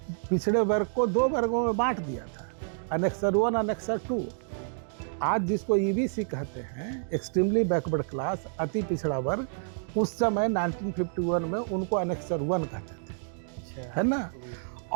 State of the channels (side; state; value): left; silent; digital silence